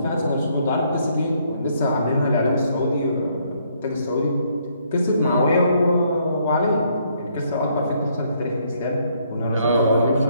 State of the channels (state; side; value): inverted; both; correlation -0.69